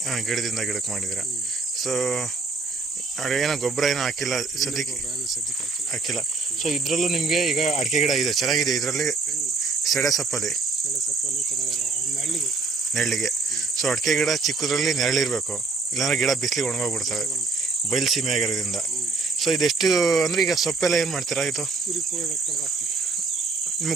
ಹಾಂ, ಗಿಡದಿಂದ ಗಿಡಕ್ಕೆ ಮಾಡಿದ್ದೀರಾ. ಸೊ ಏನೋ ಗೊಬ್ಬರ ಏನೋ ಹಾಕಿಲ್ಲ ಸದ್ಯಕ್ಕೆ? ಹಾಕಿಲ್ಲ. ಸೊ ಇದರಲ್ಲೂ ನಿಮಗೆ ಈಗ ಅಡಿಕೆ ಗಿಡ ಇದೆ, ಚೆನ್ನಾಗಿದೆ. ಇದರಲ್ಲಿ ಸೆಡೆ ಸೊಪ್ಪಲ್ಲಿ ನೆರಳಿಗೆ. ಸೊ ಅಡಿಕೆ ಗಿಡ ಚಿಕ್ಕದ್ರಲ್ಲಿ ನೆರಳಿರಬೇಕು, ಇಲ್ಲಾಂದ್ರೆ ಗಿಡ ಬಿಸಿಲಿಗೆ ಒಣಗೋಗ್ಬಿಡ್ತವೆ ಬಯಲು ಸೀಮೆ ಆಗಿರೋದ್ರಿಂದ. ಸೊ ಇದೆಷ್ಟು ಅಂದರೆ ಈಗ ಸೊಪ್ಪೆಲ್ಲ ಏನು ಮಾಡ್ತೀರಾ? ಇದು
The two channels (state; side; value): quieter; left; 3.9 dB